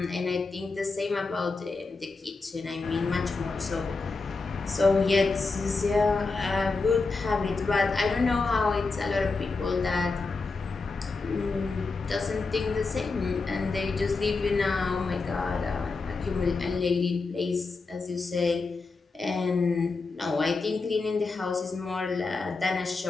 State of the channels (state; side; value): quieter; right; 4.0 dB